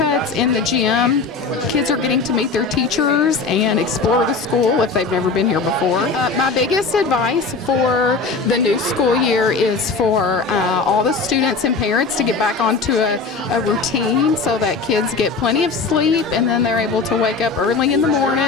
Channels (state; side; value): quieter; right; 4.3 dB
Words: in the gym. Kids are getting to meet their teachers and explore the school if they've never been here before. My biggest advice for the new school year is for all the students and parents to get back onto a routine so that kids get plenty of sleep, and then they're able to wake up early in the